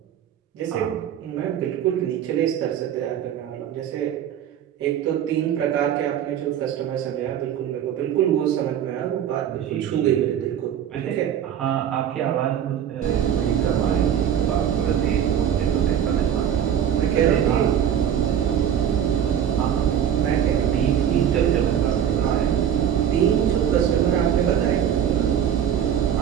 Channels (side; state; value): left; quieter; 9.4 dB